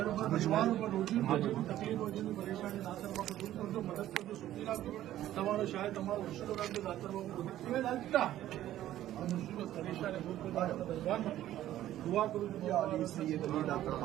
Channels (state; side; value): quieter; left; 13.2 dB